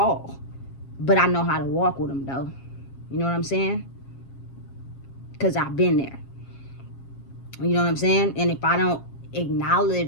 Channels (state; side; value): late; right; 7.4 ms